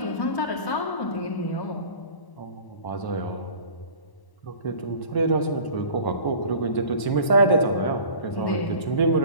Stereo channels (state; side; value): late; right; 1.0 ms